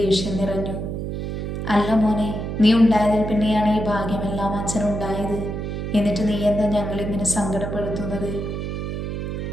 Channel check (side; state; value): right; noise; hum, 4 dB below the sound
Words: നിറഞ്ഞു. അല്ല മോനെ, നീ ഉണ്ടായതിൽ പിന്നെയാണ് ഈ ഭാഗ്യമെല്ലാം അച്ഛനുണ്ടായത്. എന്നിട്ട് നീ എന്താ ഞങ്ങളിങ്ങനെ സങ്കടപ്പെടുത്തുന്നത്?